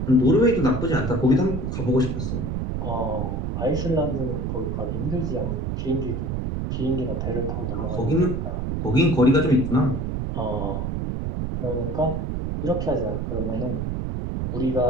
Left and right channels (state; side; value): noise; right; rumble, 2 dB below the sound